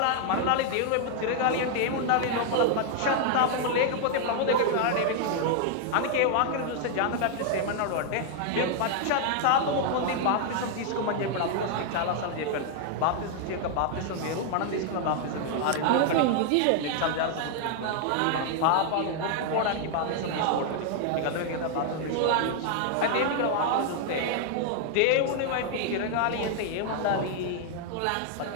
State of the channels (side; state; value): both; different; correlation 0.00